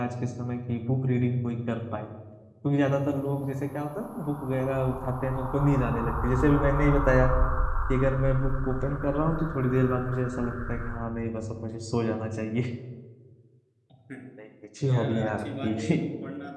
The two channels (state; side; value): identical; both; correlation 1.00